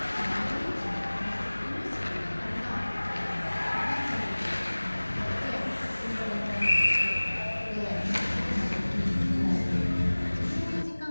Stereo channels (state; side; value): inverted; both; correlation -1.00